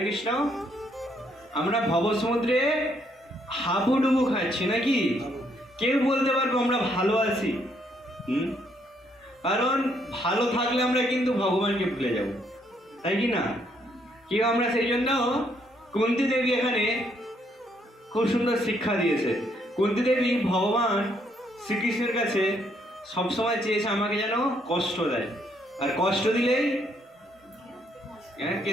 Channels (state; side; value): normal; both; correlation 0.71